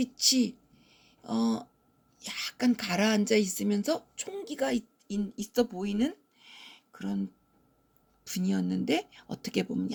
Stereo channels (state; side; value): identical; both; correlation 1.00